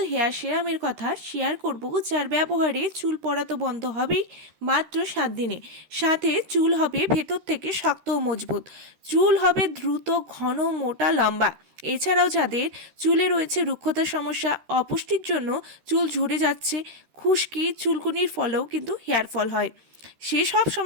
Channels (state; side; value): late; left; 13 ms